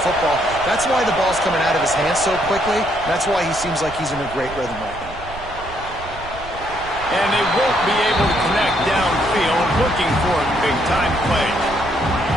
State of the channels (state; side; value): noise; right; rumble, 15 dB below the sound